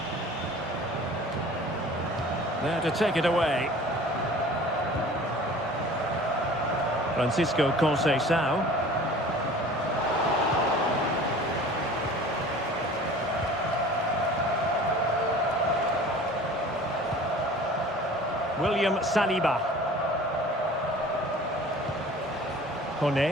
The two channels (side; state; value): both; normal; correlation 0.45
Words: There to take it away. Francisco Conceição. William Saliba.